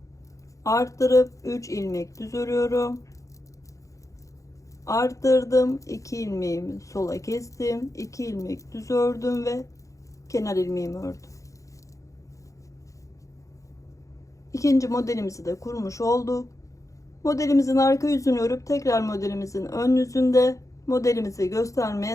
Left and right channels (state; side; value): late; right; 0.16 ms